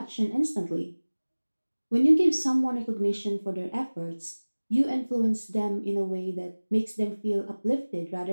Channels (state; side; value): inverted; both; correlation -1.00